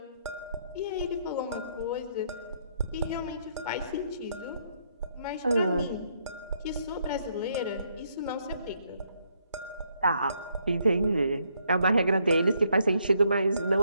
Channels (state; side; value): inverted; both; correlation -0.73